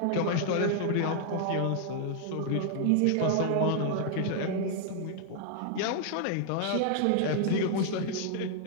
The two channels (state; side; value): different; both; correlation -0.01